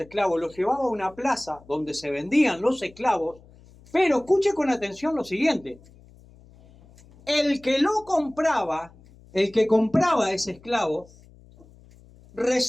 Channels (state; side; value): noise; left; hum, 25 dB below the sound